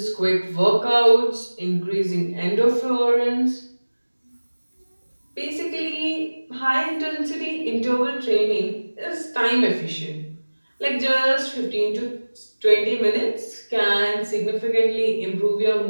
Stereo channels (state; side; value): inverted; both; correlation -1.00